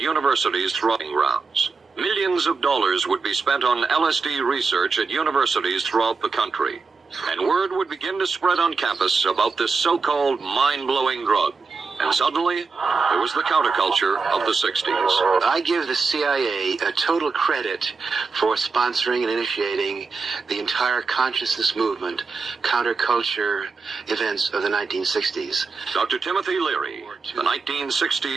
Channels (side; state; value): left; quieter; 4.5 dB